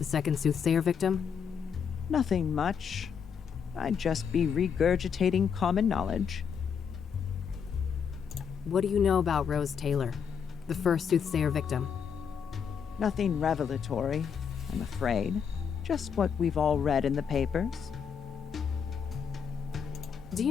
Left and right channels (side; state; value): right; quieter; 7.0 dB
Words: second Soothsayer victim? Nothing much. I'd just be regurgitating common knowledge. What do you know about Rose Taylor, the first Soothsayer victim? Nothing revelatory, I'm afraid. Just what we've all read in the papers. Do